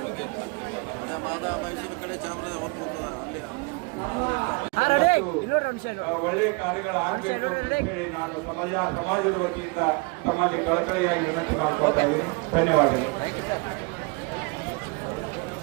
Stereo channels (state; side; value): quieter; left; 28.3 dB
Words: ಒಳ್ಳೆಯ ಕಾರ್ಯಗಳಾಗಬೇಕು ಅಂತ ಹೇಳಿ ನಾನು ಸಮಾಜದ ವತಿಯಿಂದ ತಮ್ಮಲ್ಲಿ ಕಳಕಳಿಯಾಗಿ ವಿನಂತಿ ಮಾಡ್ಕೊಳ್ತಾ ಇದ್ದೀನಿ. ಧನ್ಯವಾದಗಳು.